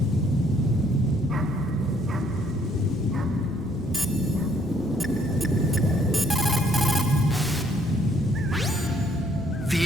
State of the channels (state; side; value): noise; left; rumble, 19 dB below the sound